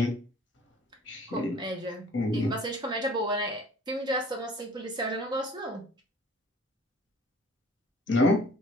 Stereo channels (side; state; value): both; normal; correlation 0.50